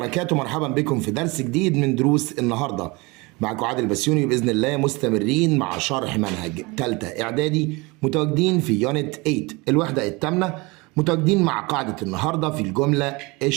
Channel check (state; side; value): quieter; left; 25.4 dB